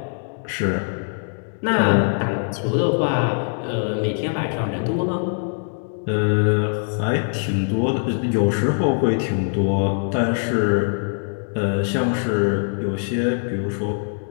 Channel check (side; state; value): right; silent; digital silence